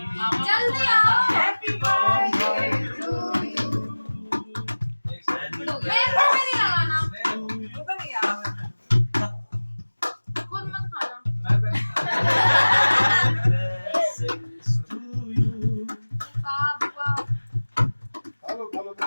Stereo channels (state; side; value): inverted; both; correlation -1.00